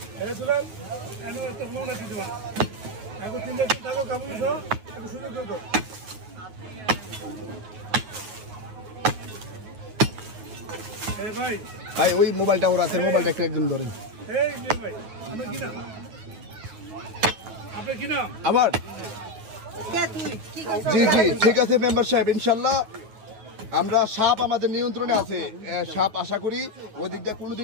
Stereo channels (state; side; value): late; left; 9.3 ms